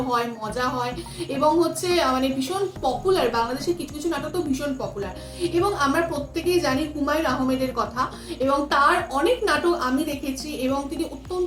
হয়, মজা হয় এবং হচ্ছে মানে ভীষণ পপুলার। বাংলাদেশের কিছু কিছু নাটক তো ভীষণ পপুলার এবং আমরা প্রত্যেকেই জানি হুমায়ুন আহমেদের কথা এবং তার অনেক নাটক আমি দেখেছি এবং তিনি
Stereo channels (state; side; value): identical; both; correlation 1.00